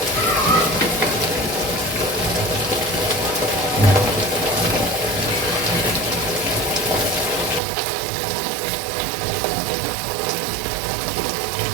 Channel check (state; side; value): drops out; left; at 7.6 s